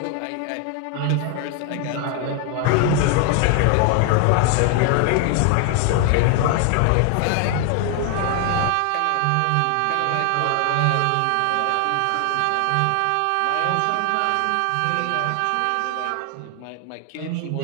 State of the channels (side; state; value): both; different; correlation 0.00